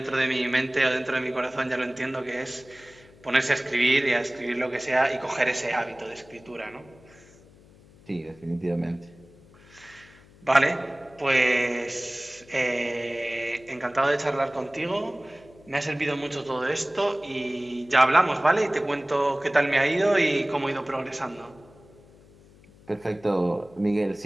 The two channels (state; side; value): noise; left; hum, 25 dB below the sound